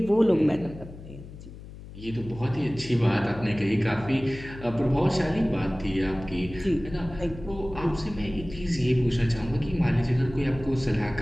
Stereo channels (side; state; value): left; noise; hum, 15 dB below the sound